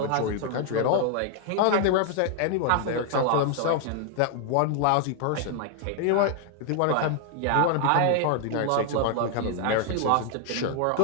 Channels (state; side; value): different; both; correlation 0.00